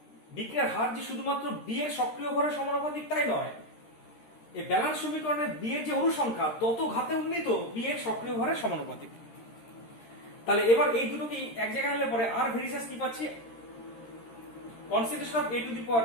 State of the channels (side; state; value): right; late; 13 ms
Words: বিক্রিয়ার হার যে শুধুমাত্র বি এর সক্রিয় ভরের সমানুপাতিক তাই নয়, এই ব্যালান্স সমীকরণে বি এর যে অনুসংখ্যা তত ঘাতে উন্নীত বি এর সক্রিয় ভরের সমানুপাতিক। তাহলে এবার এই দুটোকে এক জায়গায় আনলে পরে আর ভেরিসেস কি পাচ্ছি, concentration of A to the